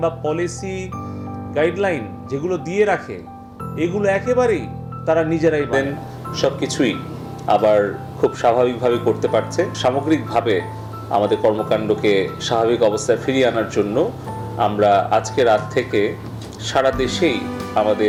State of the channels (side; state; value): both; identical; correlation 1.00